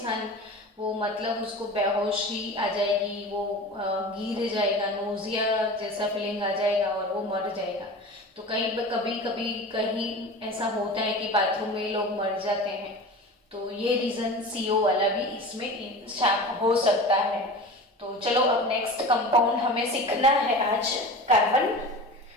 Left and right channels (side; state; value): both; normal; correlation 0.33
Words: वो मतलब उसको बेहोशी आ जाएगी, वो गिर जाएगा, नोजिया जैसा फीलिंग आ जाएगा और वो मर जाएगा। तो कहीं कभी कभी कहीं ऐसा होता है कि बाथरूम में लोग मर जाते हैं। तो ये रीजन सीओ वाला भी इसमें हो सकता है। तो चलो अब नेक्स्ट कंपाउंड हमें सीखना है आज कार्बन